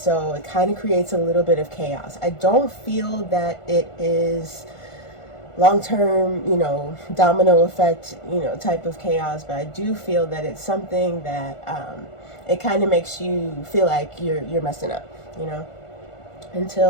it kind of creates a little bit of chaos. I don't feel that it is long-term, domino effect, type of chaos, but I do feel that it's something that it kind of makes you feel like you're messing up,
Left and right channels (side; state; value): right; late; 1.4 ms